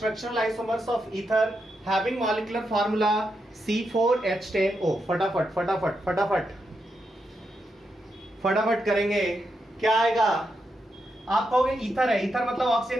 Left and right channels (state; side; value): normal; both; correlation 0.84